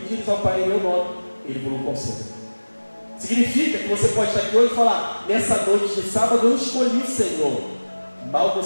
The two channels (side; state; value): both; inverted; correlation -1.00